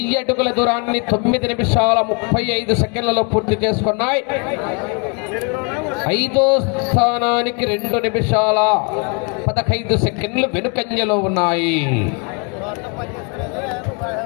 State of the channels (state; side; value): quieter; right; 35.4 dB